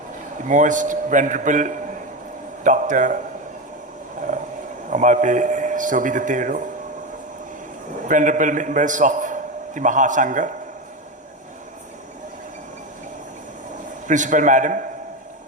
the most venerable Dr. Amalpe Sobhidatero, venerable members of the Mahasangha, Principal Madam,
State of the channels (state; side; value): normal; both; correlation 0.17